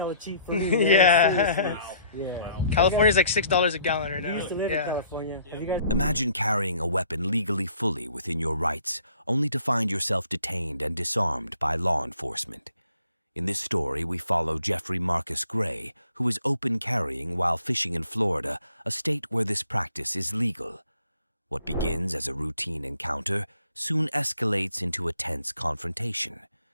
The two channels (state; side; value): inverted; both; correlation -0.62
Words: cheap for me. Man. Yeah. Seriously. Yeah. California's like $6 a gallon right I now. used to live in California. Have you guys? Imagine carrying a weapon legally fully within your rights, only to find yourself detained and disarmed by law enforcement. In this story, we follow Jeffrey Marcus Gray, who is open carrying while fishing in Florida, a state where this practice is legal. What begins as a routine encounter soon escalates into a tense confrontation.